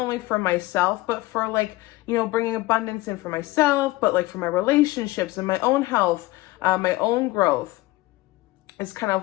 for myself, but for like, you know, bringing abundance in for myself, but like for my relationships and my own health, my own growth. Is kind of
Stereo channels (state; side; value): quieter; right; 19.4 dB